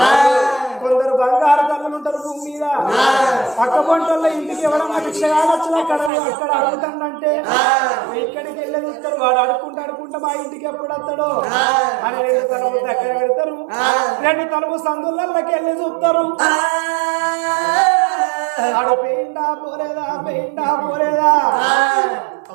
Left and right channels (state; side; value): drops out; left; at 6.1 s